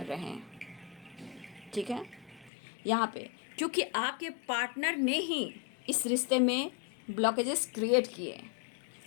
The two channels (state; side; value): drops out; right; at 2.5 s